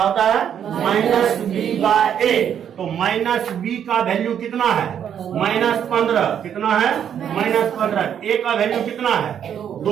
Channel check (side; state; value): left; quieter; 8.9 dB